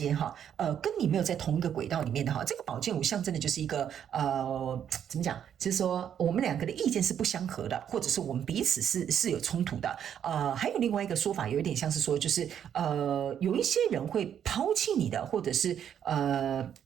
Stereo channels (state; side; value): quieter; left; 9.1 dB